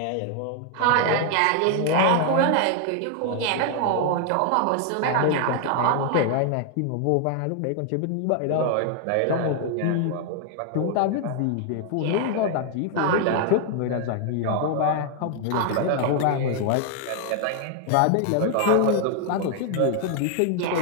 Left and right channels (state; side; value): different; both; correlation 0.00